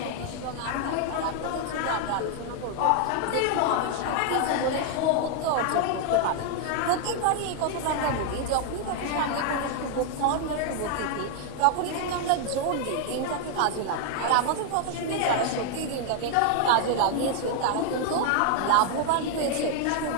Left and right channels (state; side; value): different; both; correlation 0.00